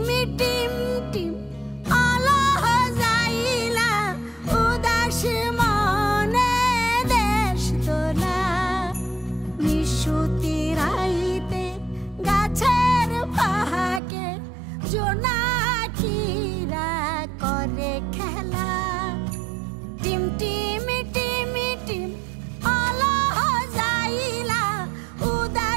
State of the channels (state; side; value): drops out; left; at 14.0 s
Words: টিম টিম আলো যাইলা উদাস মনে দেশ তোলা নিশুতি রাইতে গাছের ফাঁকে জোনাকিরা করে খেলা টিম টিমি টিমি টিম আলো যাইলা